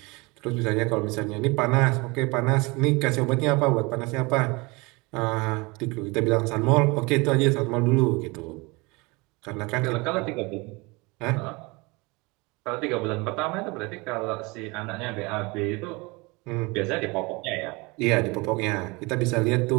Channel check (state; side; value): quieter; left; 25.9 dB